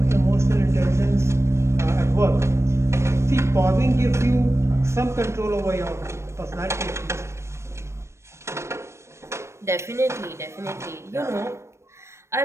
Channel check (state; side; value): late; left; 0.13 ms